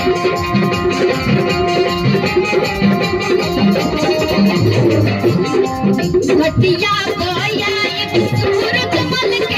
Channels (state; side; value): identical; both; correlation 1.00